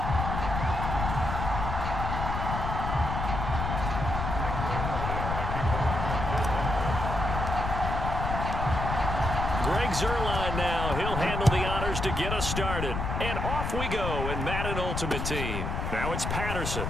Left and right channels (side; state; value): left; noise; rumble, 2 dB below the sound